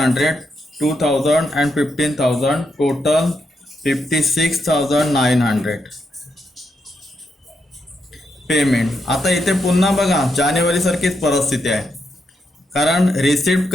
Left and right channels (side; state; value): both; normal; correlation 0.81